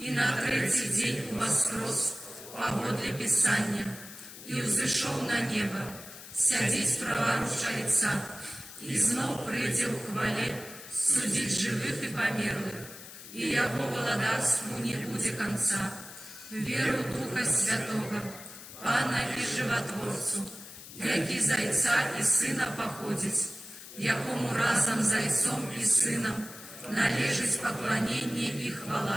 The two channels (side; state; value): left; noise; hiss, 15 dB below the sound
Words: на третий день воскрес, погодле Писания, и взошел на небо, сядеть праворуч Отца, и знов придет в хвале судить живых и померлых, и Его владарству не будет конца. Веру Духа Святого, Пана и Животворцу, яки Зайца и Сына походить, якому разом Зайцом и Сыном належить поклонение и